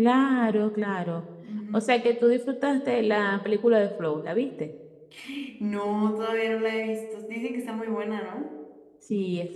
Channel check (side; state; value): both; identical; correlation 1.00